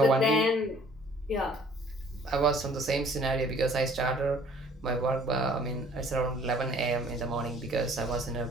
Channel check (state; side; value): normal; both; correlation 0.56